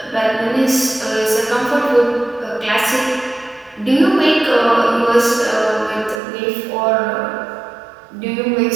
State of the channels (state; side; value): drops out; left; at 6.2 s